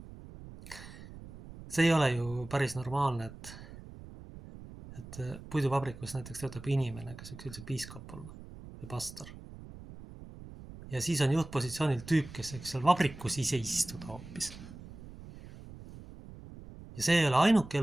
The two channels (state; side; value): noise; right; rumble, 15 dB below the sound